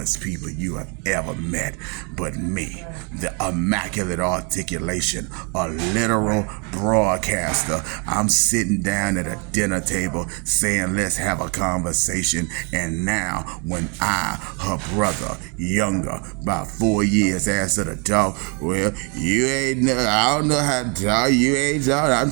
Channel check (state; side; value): quieter; left; 35.3 dB